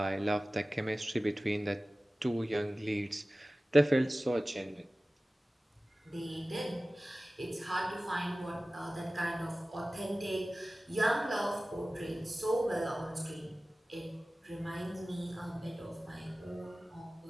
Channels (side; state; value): both; normal; correlation 0.97